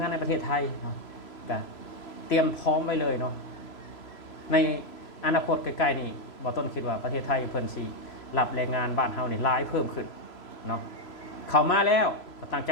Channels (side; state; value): right; late; 3.0 ms